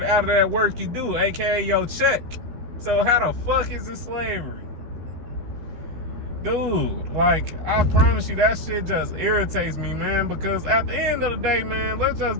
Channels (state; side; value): late; left; 13 ms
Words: out of that work you do, aka your check. So how the fuck is it slavery? Dude, like, I promise you, that shit just irritates me, man, because at the end of the day, man, let's just